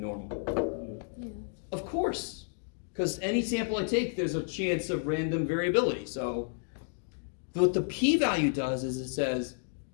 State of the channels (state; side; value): silent; right; digital silence